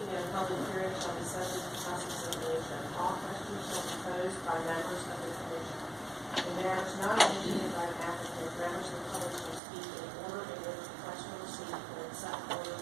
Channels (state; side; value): drops out; left; at 9.6 s